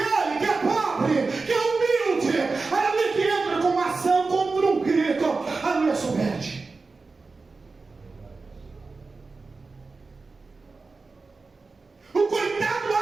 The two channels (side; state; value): left; quieter; 4.0 dB